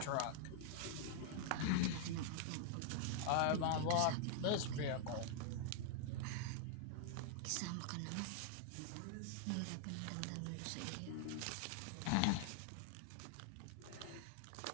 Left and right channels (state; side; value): different; both; correlation 0.00